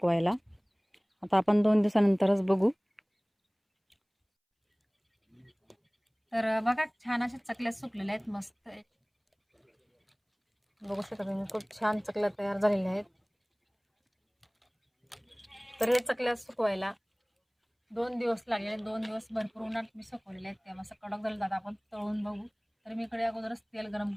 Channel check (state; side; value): identical; both; correlation 1.00